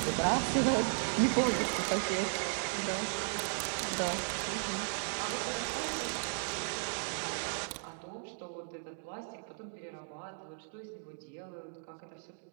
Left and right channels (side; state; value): left; silent; digital silence